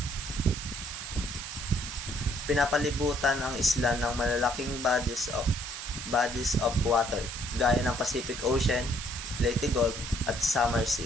Pinapalibutan ang isla ng malalaking bodies of water gaya ng Pacific Ocean, Leyte Gulf at Samar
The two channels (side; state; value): right; noise; hiss, 8 dB below the sound